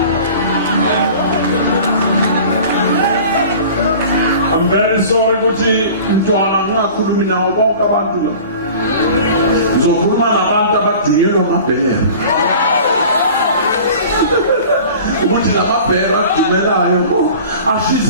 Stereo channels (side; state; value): both; inverted; correlation -0.42